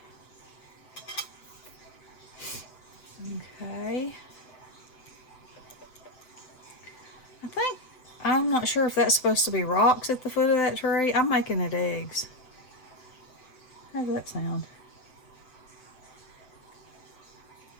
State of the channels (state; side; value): late; right; 7.8 ms